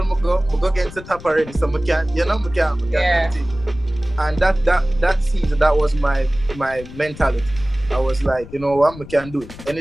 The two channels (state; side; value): noise; left; rumble, 15 dB below the sound